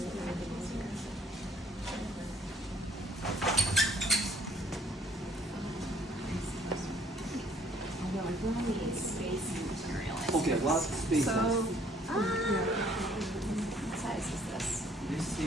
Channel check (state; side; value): normal; both; correlation 0.60